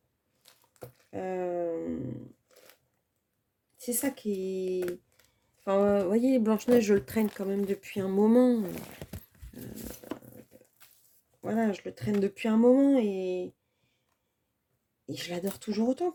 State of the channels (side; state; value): both; identical; correlation 1.00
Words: C'est ça qui est... Enfin, vous voyez, Blanche-Neige, je le traîne quand même depuis un moment. Voilà, je le traîne depuis un moment et je l'adore toujours autant,